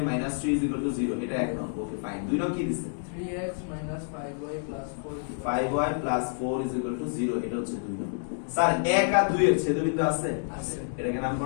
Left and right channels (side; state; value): right; silent; digital silence